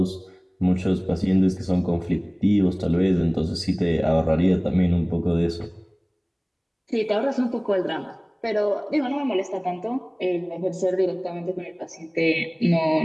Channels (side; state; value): both; identical; correlation 1.00